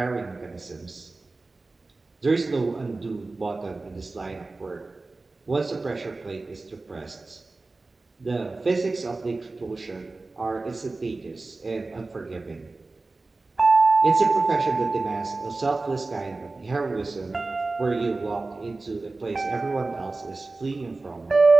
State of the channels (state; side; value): quieter; left; 3.4 dB